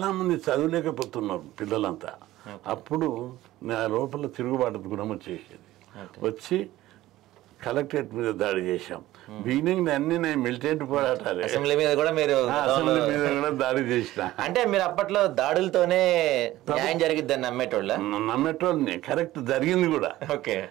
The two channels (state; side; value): quieter; left; 15.8 dB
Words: చదవలేకపోతున్నారు పిల్లలంతా. అప్పుడు నా లోపల తిరుగుబాటు గుణం వచ్చేసేది. వచ్చి కలెక్టరేట్ మీద దాడి చేశాం. బిగినింగ్ అన్ని నేను మిలిటెంట్ పోరాటాలు, అసెంబ్లీ మీద కూడా మీరు అసెంబ్లీ మీద కూడా దాడి చేసిన. అంటే మీరు అప్పట్లో దాడులతోనే న్యాయం జరిగిద్దని నమ్మేటోళ్ళని. కరెక్ట్ జరిగింది కూడా.